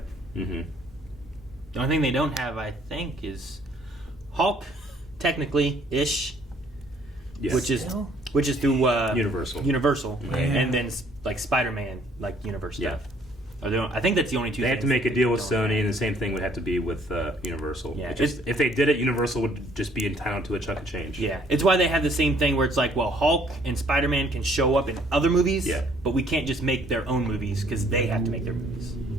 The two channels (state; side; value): normal; both; correlation 0.62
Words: the only thing they don't have, I think, is Hulk, technically ish, yes. which is through Universal, and then like Spider-Man, like Universe stuff. I think that's the only two. They have to make a deal with Sony, and the same thing would have to be with Universal. Yeah, if they did it, Universal would just be entitled to a chunk of change. Yeah, it's why they have the same thing where it's like, well, Hulk and Spider-Man can show up in other movies, but we can't just make their own movies because they have to make their movies.